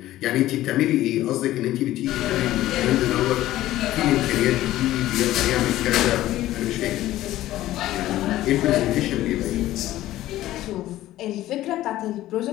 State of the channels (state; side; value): quieter; right; 14.9 dB